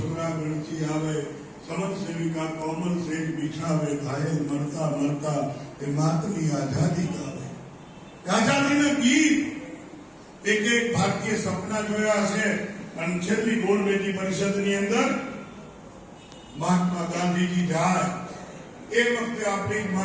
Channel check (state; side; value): identical; both; correlation 1.00